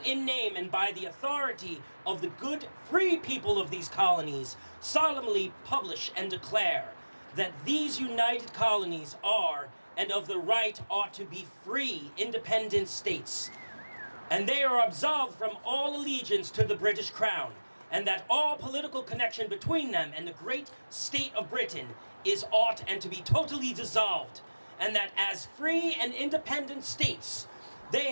in name and by the authority of the good free people of these colonies solemnly publish and declare that these united colonies are and of the right ought to be free, independent states, and they are absolved from all allegiance to the British Crown, and that all political connection between them and the great state of Britain is ought and to be totally dissolved, and that as free and independent states, they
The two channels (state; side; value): inverted; both; correlation -1.00